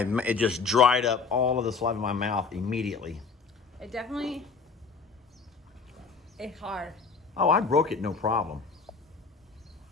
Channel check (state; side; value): quieter; right; 5.0 dB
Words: it just dried up all of the saliva in my mouth immediately. It definitely. It's hard. Oh, I broke it, no problem.